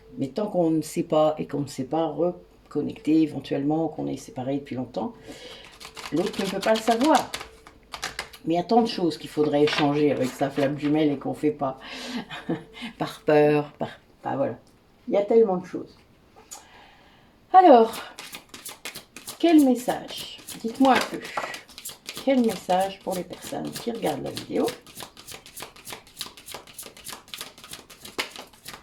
Mais tant qu'on ne sait pas et qu'on ne sait pas reconnecter éventuellement, qu'on est séparé depuis longtemps, l'autre ne peut pas le savoir. Mais il y a tant de choses qu'il faudrait échanger avec sa flamme jumelle et qu'on ne fait pas. Par peur, enfin, voilà. Il y a tellement de choses. Alors, quel message? Dites-moi un peu. Quel message pour les personnes qui regardent la vidéo?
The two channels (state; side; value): identical; both; correlation 1.00